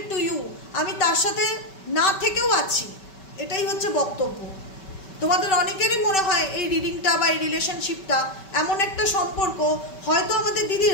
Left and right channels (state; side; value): late; right; 5.2 ms